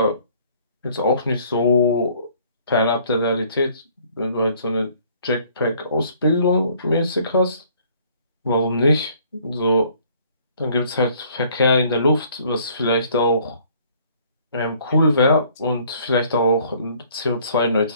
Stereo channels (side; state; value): both; inverted; correlation -0.59